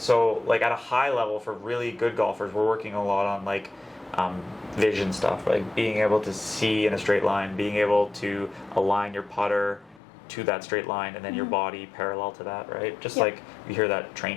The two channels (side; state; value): right; drops out; at 10.0 s